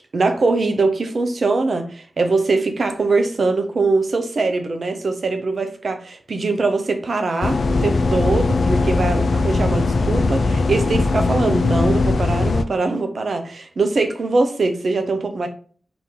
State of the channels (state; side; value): normal; both; correlation 0.89